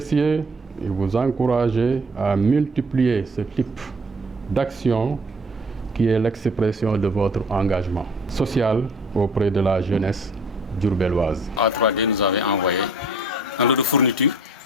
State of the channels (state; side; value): normal; both; correlation 0.53